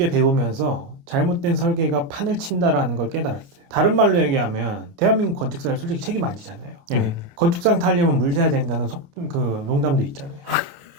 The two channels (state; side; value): late; left; 28 ms